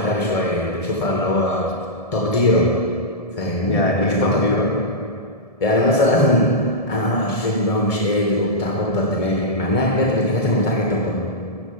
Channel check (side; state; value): right; late; 1.7 ms